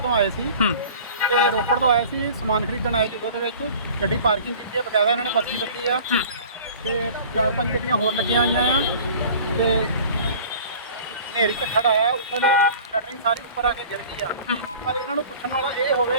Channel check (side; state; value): both; inverted; correlation -0.44